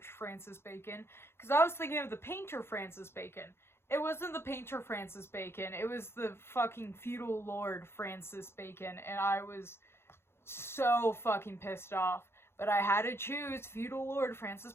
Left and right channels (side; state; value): right; late; 0.12 ms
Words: Francis Bacon, because I was thinking of the painter Francis Bacon. It wasn't the painter Francis Bacon, it was the fucking feudal lord Francis Bacon, and I was so fucking pissed off. But I had to choose feudal lord Francis